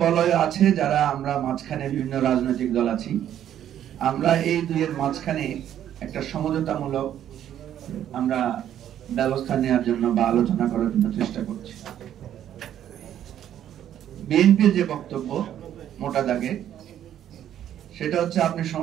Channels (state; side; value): quieter; left; 10.8 dB